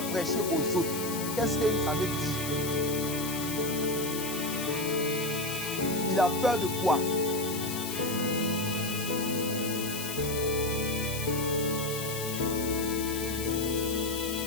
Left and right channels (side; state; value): left; noise; hiss, 6 dB below the sound